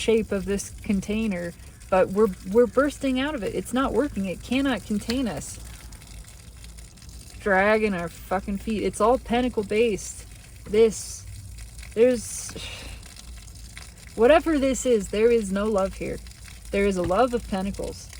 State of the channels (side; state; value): both; identical; correlation 1.00